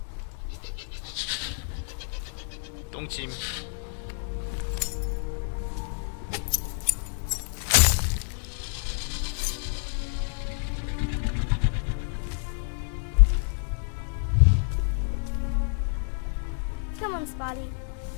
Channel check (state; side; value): silent; right; 59 dB below the other